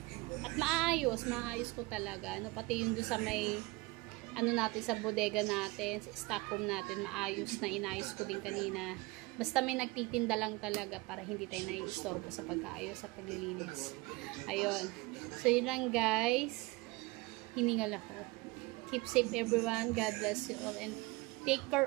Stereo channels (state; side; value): quieter; left; 23.2 dB